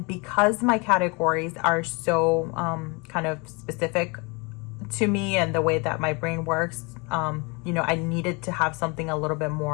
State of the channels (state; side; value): quieter; right; 29.4 dB